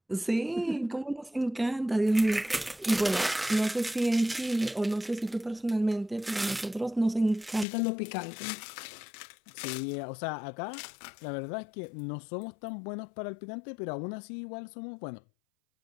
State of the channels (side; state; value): right; drops out; at 7.7 s